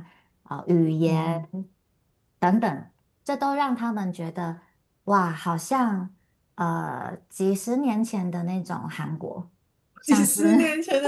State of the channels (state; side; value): identical; both; correlation 1.00